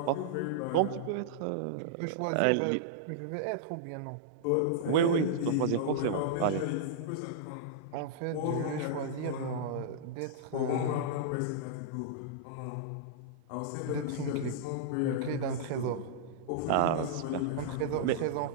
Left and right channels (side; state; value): both; different; correlation -0.02